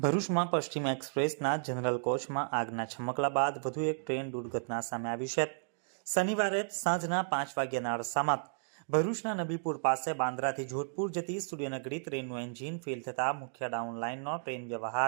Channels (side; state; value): left; silent; digital silence